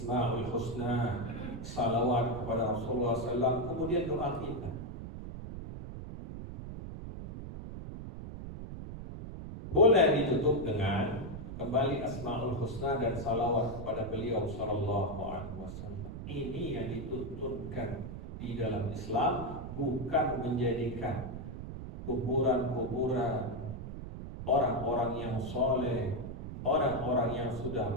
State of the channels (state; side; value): noise; right; rumble, 9 dB below the sound